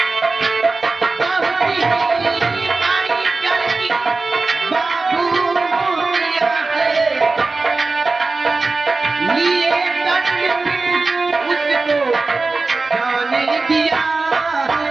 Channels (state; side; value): quieter; left; 3.7 dB